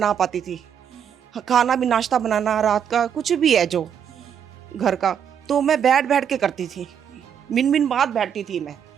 पाती थी। खाना भी, नाश्ता बनाना, रात का कुछ भी है जो घर का, तो मैं बैठ-बैठ के करती थी। मिन-मिन बाद बैठती थी मैं।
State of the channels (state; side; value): quieter; left; 8.3 dB